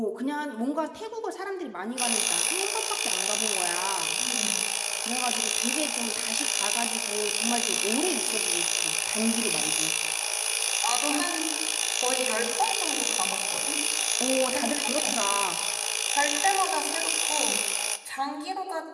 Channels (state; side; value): identical; both; correlation 1.00